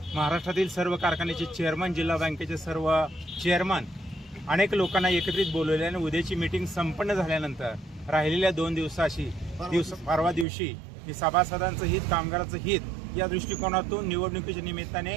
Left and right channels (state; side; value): drops out; left; at 10.5 s